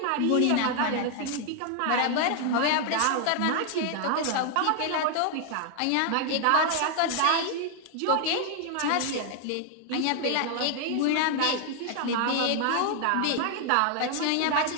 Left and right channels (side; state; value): both; different; correlation 0.00